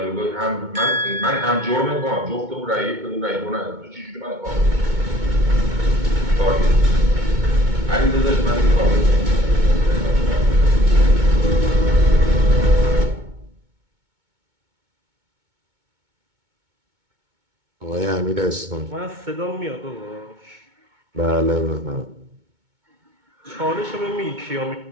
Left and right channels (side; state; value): left; late; 2.2 ms